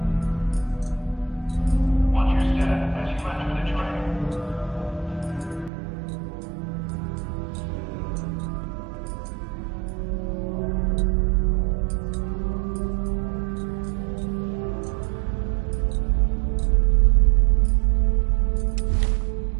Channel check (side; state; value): left; drops out; at 5.7 s